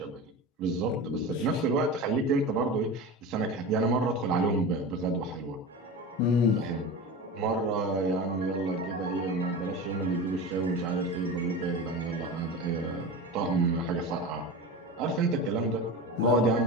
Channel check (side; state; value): both; normal; correlation 0.28